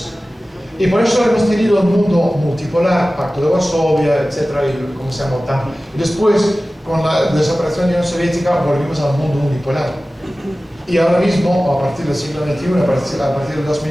Y por eso hemos tenido un mundo multipolar, Pacto de Varsovia, etcétera, y como se llama OTAN. Y después, con la desaparición de la Unión Soviética, volvimos al mundo unipolar. Y ahora mismo, a partir del siglo XXI, a partir del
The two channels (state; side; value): normal; both; correlation 0.96